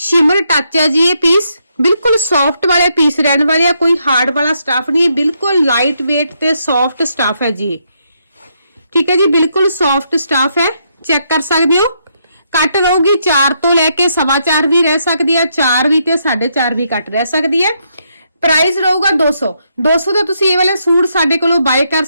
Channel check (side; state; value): both; inverted; correlation -0.77